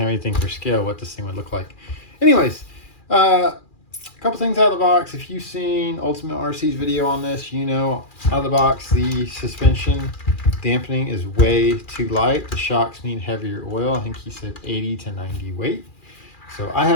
anything for scale, what this thing would look like. Anyways, a couple things out of the box. If you've seen Ultimate RC's video on this, you know out of the box the suspension dampening is way too light. The shocks need heavier oil. I think he said 80 to 90 weight. So I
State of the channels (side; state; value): right; late; 2.4 ms